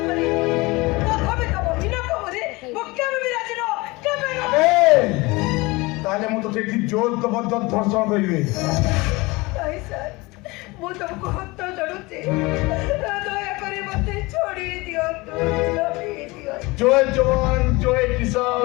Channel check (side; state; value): right; quieter; 23.3 dB